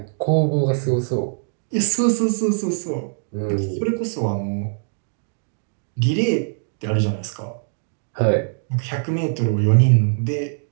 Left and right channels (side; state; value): left; silent; digital silence